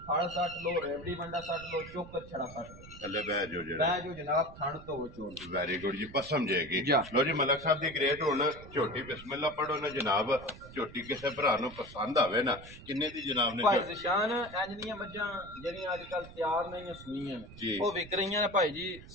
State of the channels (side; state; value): right; noise; rumble, 17 dB below the sound